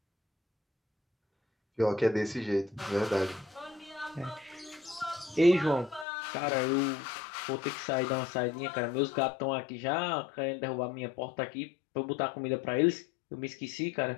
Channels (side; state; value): right; drops out; at 6.1 s